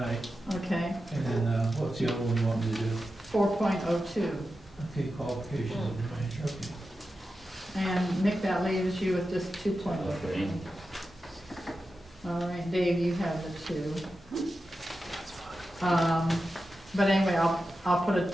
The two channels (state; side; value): normal; both; correlation 0.91